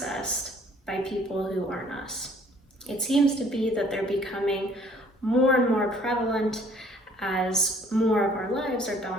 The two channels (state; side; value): normal; both; correlation 0.58